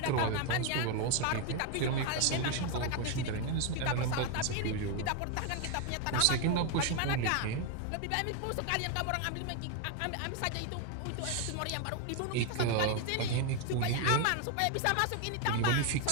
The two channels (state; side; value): different; both; correlation 0.01